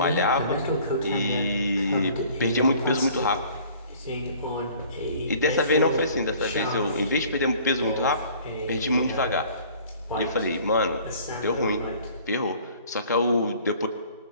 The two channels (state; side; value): inverted; both; correlation -0.52